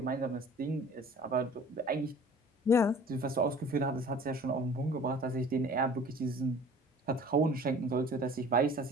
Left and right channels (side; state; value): both; normal; correlation 0.47